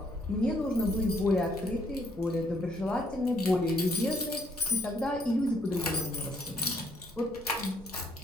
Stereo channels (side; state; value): both; normal; correlation 0.69